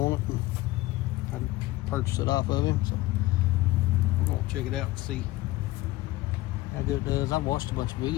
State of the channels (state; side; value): quieter; right; 18.2 dB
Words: it, and I'd purchase it off of him. So we're gonna check it out and see how good it does. I've watched a bunch of